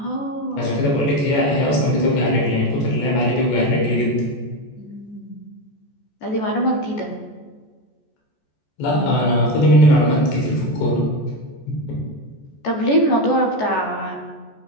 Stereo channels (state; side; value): late; right; 14 ms